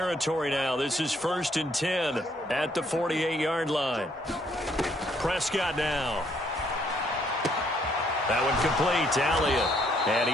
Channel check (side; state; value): both; normal; correlation 0.68